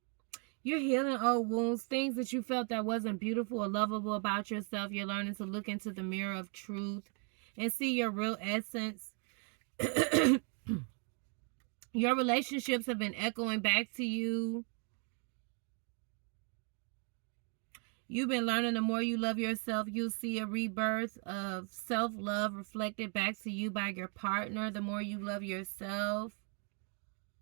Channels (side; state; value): left; quieter; 39.6 dB